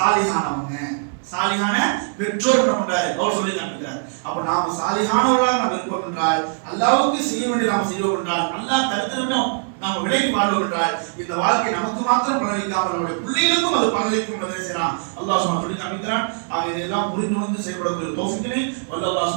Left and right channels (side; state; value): left; silent; digital silence